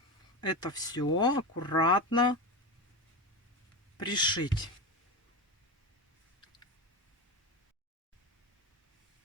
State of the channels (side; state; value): both; normal; correlation 0.21